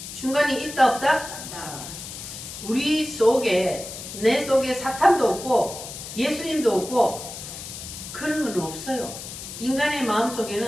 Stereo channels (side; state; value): left; noise; hiss, 10 dB below the sound